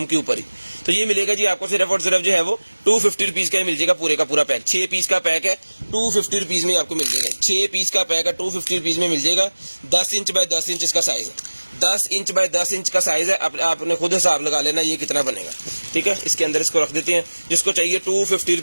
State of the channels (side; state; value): both; inverted; correlation -1.00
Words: के ऊपर ही। तो ये मिलेगा जी आपको सिर्फ और सिर्फ जो है वो 250 रुपीज़ का ही मिल जाएगा, पूरे का पूरा पैक। 6 पीस का पैक है, 250 रुपीज़ में आपको मिल जाएगा। 6 पीस का पैक है, 250 रुपीज़ में मिल जाएगा। 10 इंच बाय 10 इंच इसका साइज है, 10 इंच बाय 10 इंच का साइज है। आपने खुद हिसाब लगा लेना ये कितना बनेगा, ठीक है। इसके अंदर इसको रख देते हैं, जिसको चाहिए 250